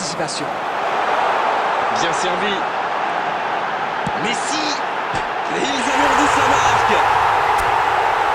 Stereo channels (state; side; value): identical; both; correlation 1.00